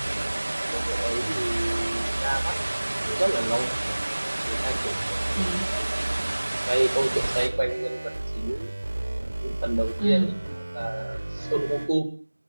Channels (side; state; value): both; inverted; correlation -1.00